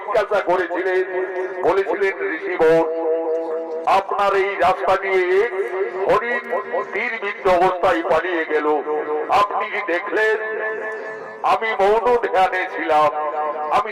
করেছিলেন। বলেছিলেন ঋষিবর আপনার এই রাস্তা দিয়ে হরিণ তীরবিদ্ধ অবস্থায় পালিয়ে গেল, আপনি কি দেখলেন? আমি মৌন ধ্যানে ছিলাম। আমি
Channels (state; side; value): identical; both; correlation 1.00